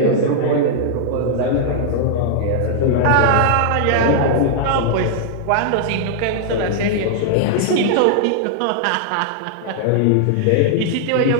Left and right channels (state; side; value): different; both; correlation -0.01